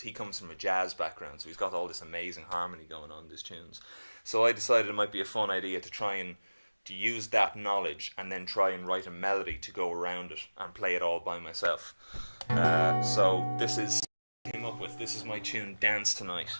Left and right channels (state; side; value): inverted; both; correlation -1.00